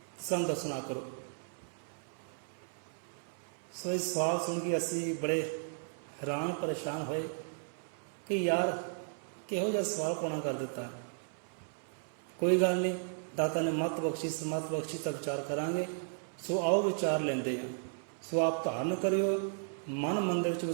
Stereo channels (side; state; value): left; silent; 55 dB below the other